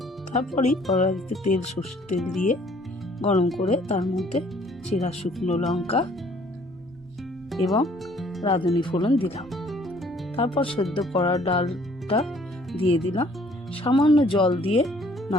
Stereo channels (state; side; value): normal; both; correlation 0.59